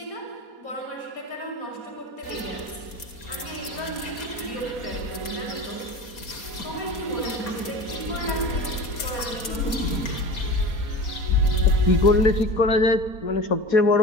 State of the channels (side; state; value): right; late; 4.2 ms